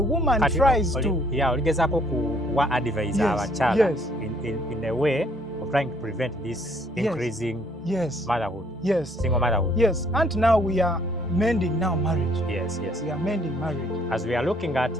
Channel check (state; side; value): normal; both; correlation 0.64